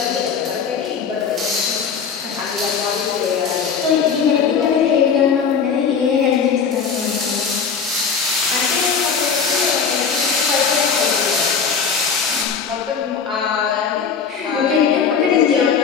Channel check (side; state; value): right; quieter; 6.2 dB